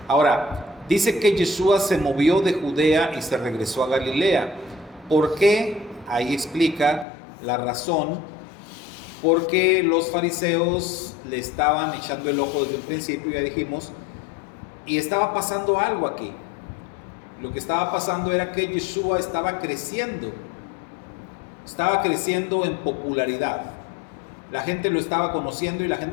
Ahora, dice que Yeshua se movió de Judea y se regresó a Galilea. ¿Por qué? Ahí explica la razón. Porque los fariseos le estaban echando el ojo desde un principio, ya dijimos, y estaba pasando algo aquí. Lo que estaba pasando era que Yeshua estaba creciendo en popularidad. La gente lo estaba conociendo y la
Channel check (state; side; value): drops out; right; at 7.1 s